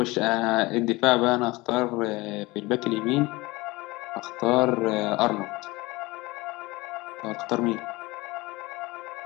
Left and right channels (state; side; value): quieter; right; 21.9 dB